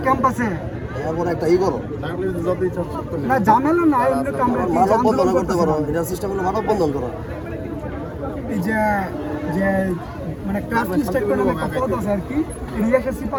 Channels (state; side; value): identical; both; correlation 1.00